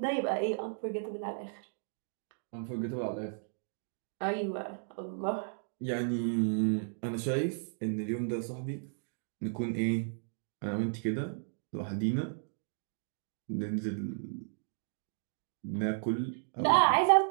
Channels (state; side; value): silent; left; digital silence